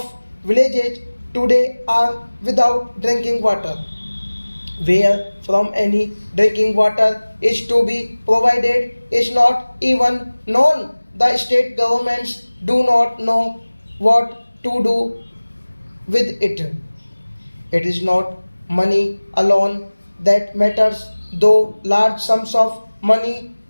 villages today are without drinking water. Where from any drinking water is to be provided is not even known. The state governments do not know what to do with it. It is not money alone that matters, though large sums of money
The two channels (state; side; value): inverted; both; correlation -1.00